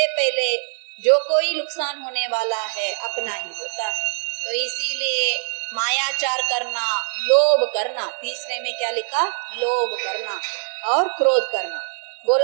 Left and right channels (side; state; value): left; silent; 64 dB below the other